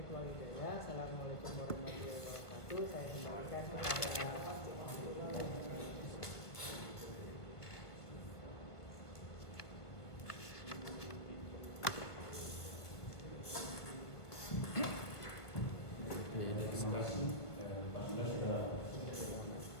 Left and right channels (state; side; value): late; right; 1.6 ms